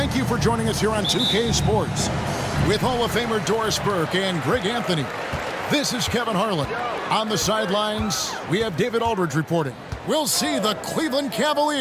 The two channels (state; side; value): identical; both; correlation 1.00